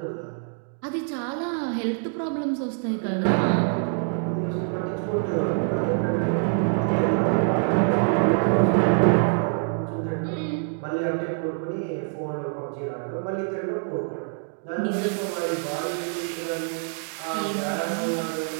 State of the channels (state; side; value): silent; left; 55 dB below the other